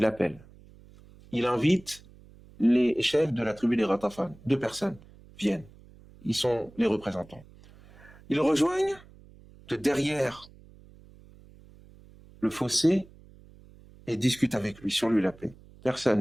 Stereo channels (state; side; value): noise; right; hum, 23 dB below the sound